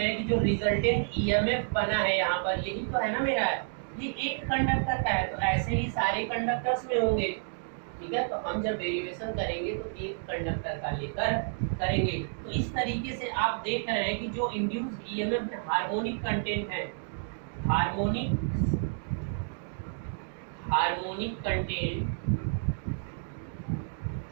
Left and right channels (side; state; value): left; silent; digital silence